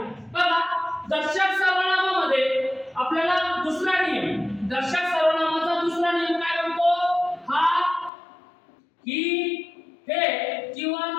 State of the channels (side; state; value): right; drops out; at 8.1 s